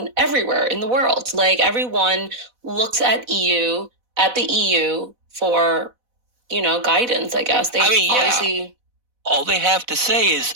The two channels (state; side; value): late; left; 4.1 ms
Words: everywhere in the world. Like, everyone looks at the EU for, guidance, I guess. Obviously, all they have to say is,